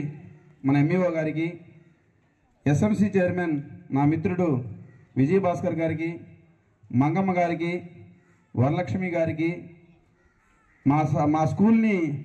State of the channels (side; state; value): both; identical; correlation 1.00